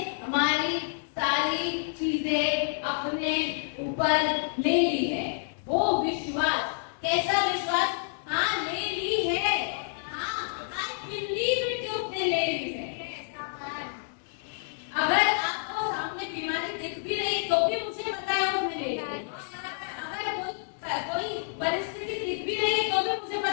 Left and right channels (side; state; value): right; silent; digital silence